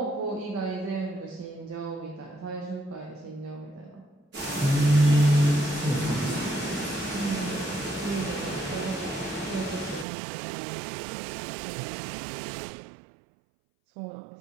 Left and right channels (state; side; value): drops out; left; at 10.1 s